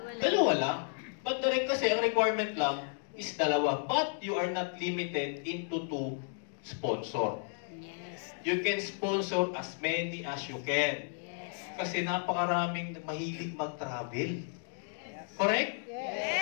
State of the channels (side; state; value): right; silent; 56 dB below the other